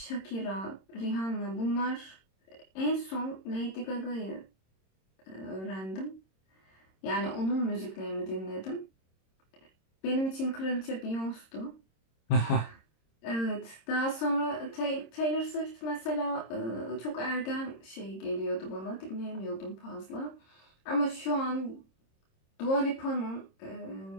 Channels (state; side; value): late; right; 26 ms